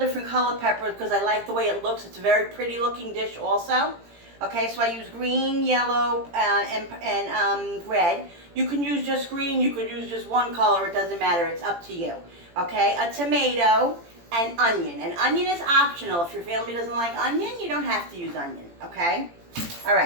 color peppers because I like the way it looks. It's a very pretty looking dish also. Okay, so I use green, yellow, and red. You can use just green, you could use just one color, it doesn't matter, it's up to you. Okay, a tomato and onion. And onion is optional. If your family doesn't like onion, you don't have to use onion, okay? All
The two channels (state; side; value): late; left; 17 ms